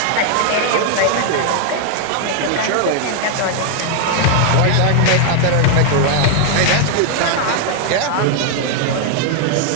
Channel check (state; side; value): different; both; correlation 0.00